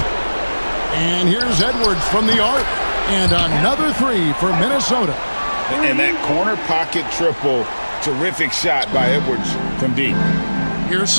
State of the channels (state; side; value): inverted; both; correlation -1.00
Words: And here's Edwards from the arc. And another 3 for Minnesota. And that corner pocket triple, terrific shot by Edwards from deep. Here's